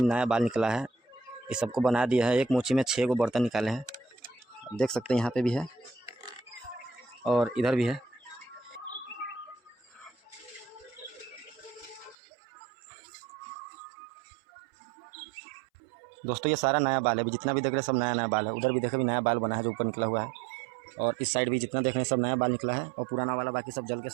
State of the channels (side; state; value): left; drops out; at 12.2 s